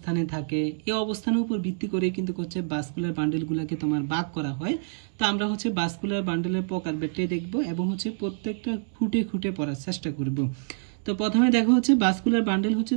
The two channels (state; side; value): silent; left; digital silence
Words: থাকে, এই অবস্থানের উপর ভিত্তি করে কিন্তু হচ্ছে ভাস্কুলার বান্ডেলগুলোকে তোমার ভাগ করা হয়। তো আমরা হচ্ছে ভাস্কুলার বান্ডেলের প্রকারভেদে দেখব এবং হচ্ছে প্রত্যেকটা খুঁটে খুঁটে পড়ার চেষ্টা করব। তো প্রথমে দেখো হচ্ছে ভাস্কুলার বান্ডেল হচ্ছে